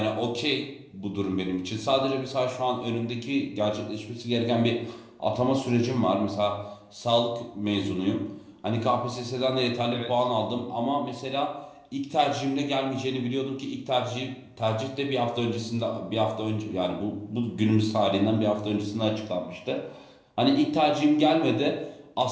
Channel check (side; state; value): both; identical; correlation 1.00